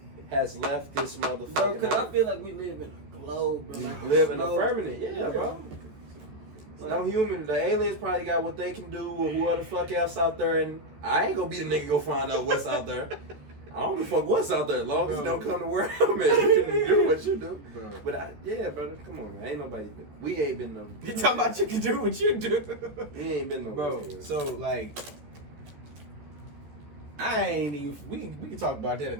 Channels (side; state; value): left; late; 14 ms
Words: has left this motherfucking Bro, because I earth. feel like we live in a globe, bro. We Like live in a globe. permanent. Yeah, bro. No human. The aliens probably got what they can do or whoever the fuck else out there. And I ain't gonna be the nigga go find out what's out there. I don't give a fuck what's out there as long as it don't come to where I'm at. You can do what you do. Bro. But yeah, brother, come on, man. Ain't nobody been. We ain't been no. You talking about you can do what you do, We ain't been no. bro. So like, I ain't even. We can talk about that